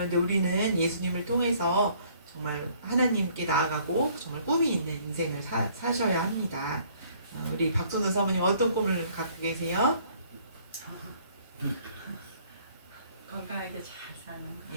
우리는 예수님을 통해서 정말 하나님께 나아가고 정말 꿈이 있는 인생을 사셔야 합니다. 우리 박선우 사모님 어떤 꿈을 갖고 계세요? 건강하게 잘 사는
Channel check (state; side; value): inverted; both; correlation -0.60